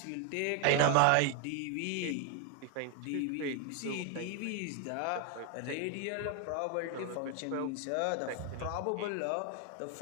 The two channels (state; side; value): different; both; correlation 0.01